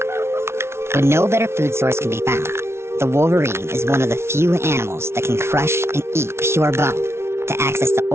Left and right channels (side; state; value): left; late; 0.12 ms